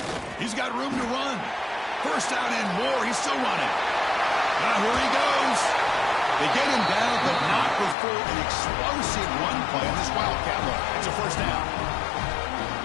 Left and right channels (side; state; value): right; drops out; at 8.0 s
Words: He's got room to run. First down and more. He's still running. Now here he goes. They get him down, but not before an explosive run play on this Wildcat look. It's a first down.